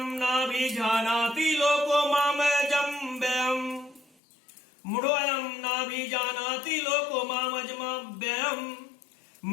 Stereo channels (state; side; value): drops out; right; at 4.2 s